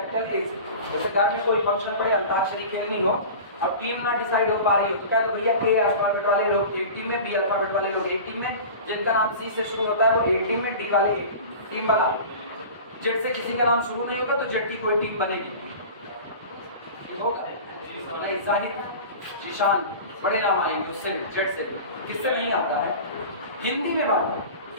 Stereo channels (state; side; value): inverted; both; correlation -0.36